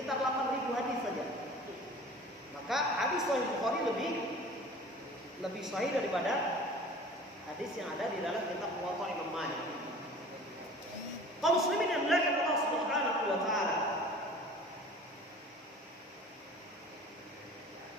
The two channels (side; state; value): both; normal; correlation 0.43